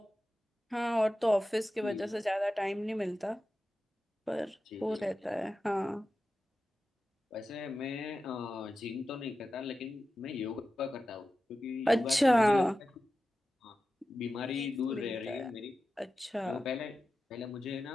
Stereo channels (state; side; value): normal; both; correlation 0.93